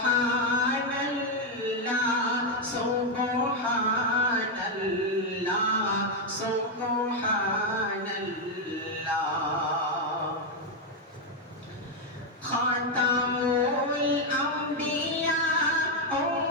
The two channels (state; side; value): normal; both; correlation 0.03